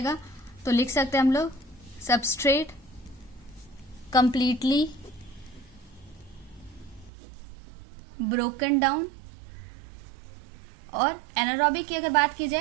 तो लिख सकते हैं हम लोग सबस्ट्रेट कंप्लीटली ब्रोकन डाउन। और एनारोबिक की अगर बात की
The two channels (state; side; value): drops out; left; at 7.1 s